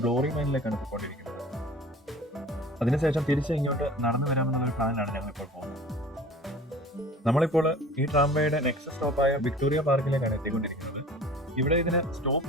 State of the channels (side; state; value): both; normal; correlation 0.43